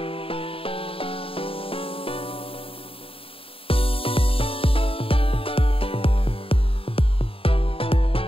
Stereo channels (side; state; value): right; late; 0.27 ms